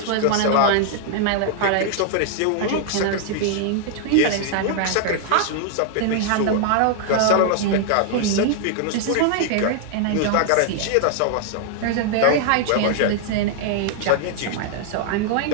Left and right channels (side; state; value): both; different; correlation 0.00